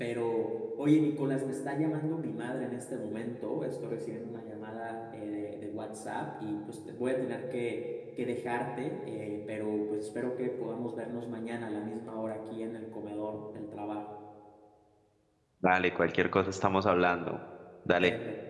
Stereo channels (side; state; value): both; identical; correlation 1.00